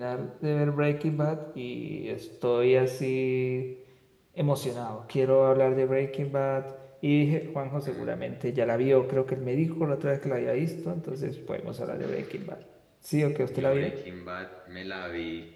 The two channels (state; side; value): identical; both; correlation 1.00